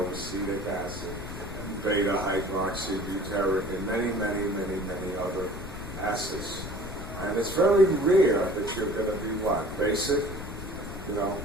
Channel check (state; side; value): noise; left; rumble, 10 dB below the sound